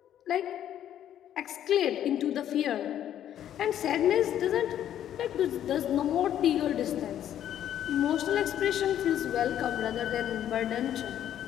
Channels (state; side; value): quieter; right; 10.8 dB